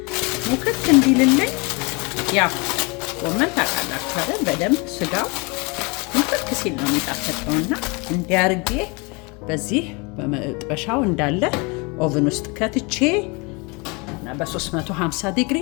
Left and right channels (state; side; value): quieter; right; 29.4 dB